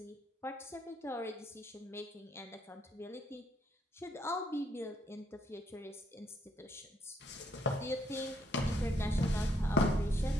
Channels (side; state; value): both; normal; correlation 0.73